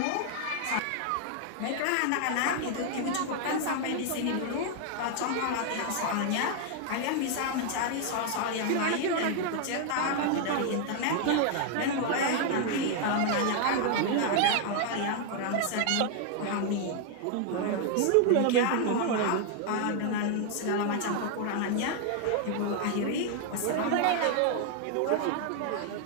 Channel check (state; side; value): different; both; correlation 0.00